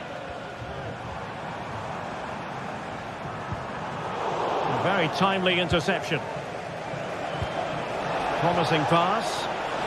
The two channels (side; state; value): both; identical; correlation 1.00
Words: A very timely interception. Promising pass.